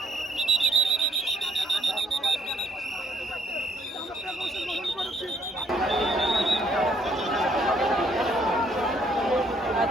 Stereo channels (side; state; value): both; normal; correlation 0.66